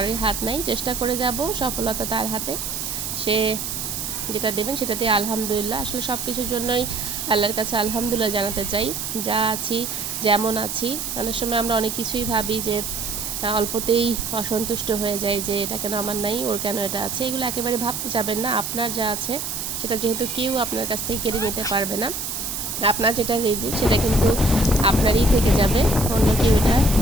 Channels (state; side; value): noise; right; hiss, 4 dB below the sound